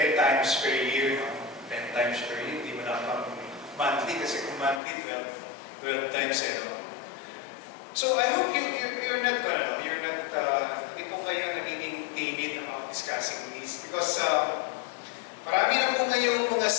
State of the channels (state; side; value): drops out; right; at 4.8 s